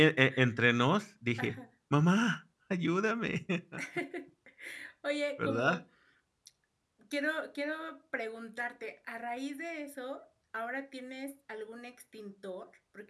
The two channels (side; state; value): both; identical; correlation 1.00